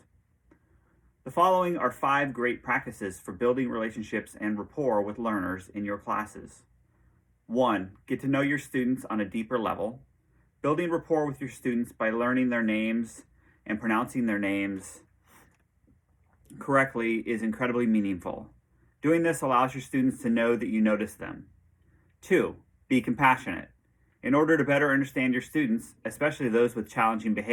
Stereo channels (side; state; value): both; identical; correlation 1.00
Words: The following are 5 great practices for building relationships and rapport with learners in your classes. 1. Get to know your students on a deeper level. Building rapport with your students by learning their names and pronouncing their names correctly is incredibly meaningful. Doing this allows your students to know that you notice them. 2. Be compassionate. In order to better understand your students, especially those with challenging